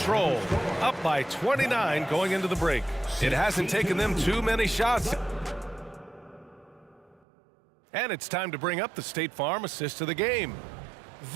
up by 29 going into the break. It hasn't taken them too many shots. And it's time to bring up the State Farm assist of the game.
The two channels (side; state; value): left; drops out; at 7.2 s